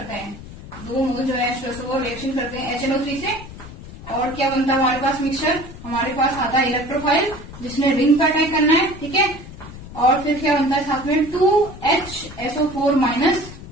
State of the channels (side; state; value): left; noise; rumble, 15 dB below the sound